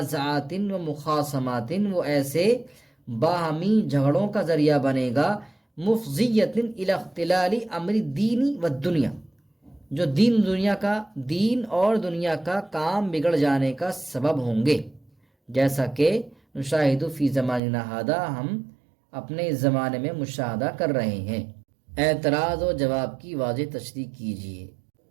و مخاصمات، وہ ایسے باہمی جھگڑوں کا ذریعہ بنے گا، مفضیۃ الی اختلال امر الدین والدنیا، جو دین اور دنیا کا کام بگڑ جانے کا سبب ہوں گے، جیسا کہ نشاہد فی زماننا ھذا، ہم اپنے اس زمانے میں مشاہدہ کر رہے ہیں۔ اعتراض و جواب کی واضح تشریح کیجیے۔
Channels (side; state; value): left; drops out; at 17.6 s